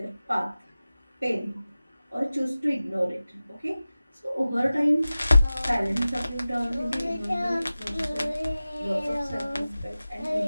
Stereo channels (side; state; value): both; inverted; correlation -0.96